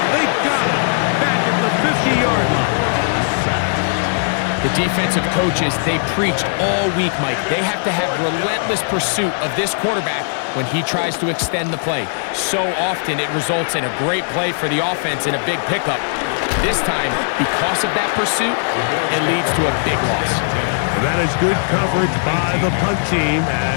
They got him back at the 50-yard line. The defensive coaches, they preached all week, Mike. They have to have relentless pursuit of this quarterback when he tries to extend the play. So often it results in a great play for the offense and a big pickup. This time, because of that pursuit, it leads to a big loss. That is good coverage by the punt team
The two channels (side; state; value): right; silent; digital silence